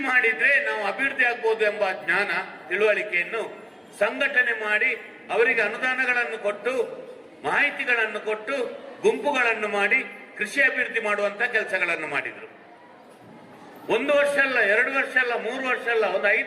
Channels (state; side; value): identical; both; correlation 1.00